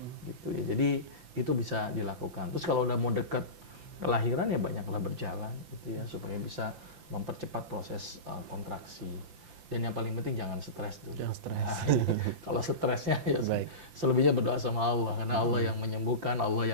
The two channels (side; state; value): left; late; 5.8 ms